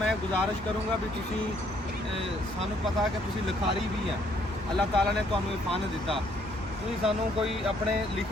गुजारिश करूँगा भी तुसी सानू पता कि तुसी लिखारी भी हैं, अल्लाह ताला ने तुहानू ये फन दिता, तुसी सानू कोई अपने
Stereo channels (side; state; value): both; normal; correlation 0.67